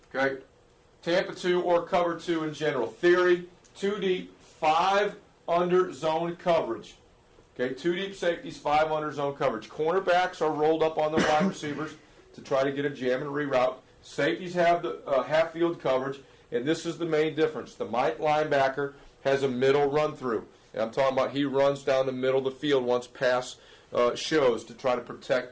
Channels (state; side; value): identical; both; correlation 1.00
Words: Okay? Tampa 2 or cover 2 in general. Theory, 2 deep, 5 under zone coverage. Okay, 2 deep safeties, 5 under zone coverage. Cornerbacks are rolled up on the wide receivers to try to get a jam and reroute. Safeties have the half field coverage, and this is the main difference. The Mike linebacker has a middle run through. And I'm talking about he runs down the middle of the field once pass shows to try to